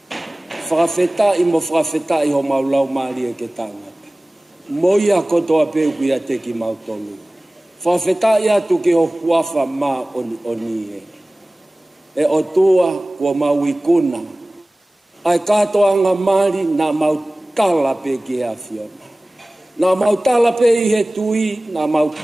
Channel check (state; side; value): normal; both; correlation 0.98